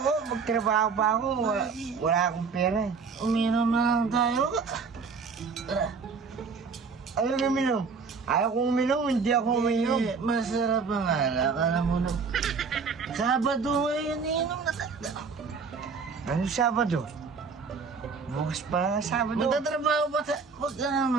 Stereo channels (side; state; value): left; quieter; 5.2 dB